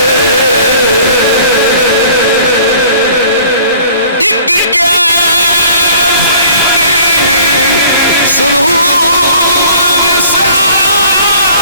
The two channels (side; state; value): both; inverted; correlation -0.51